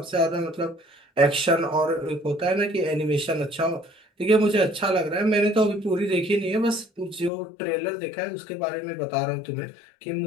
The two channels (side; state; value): right; drops out; at 7.3 s